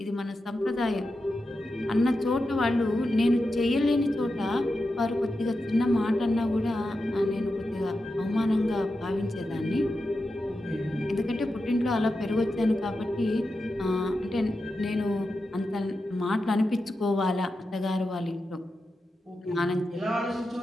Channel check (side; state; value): both; normal; correlation 0.90